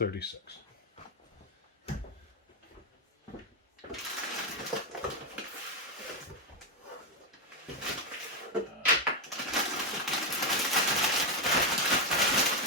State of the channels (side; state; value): both; normal; correlation 0.06